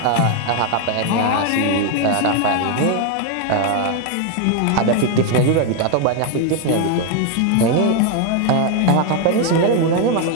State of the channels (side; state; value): both; different; correlation 0.01